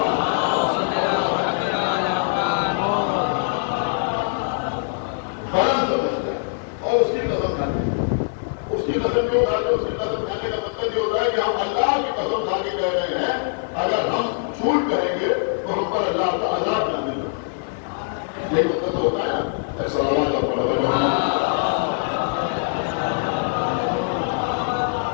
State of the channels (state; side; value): silent; right; 56 dB below the other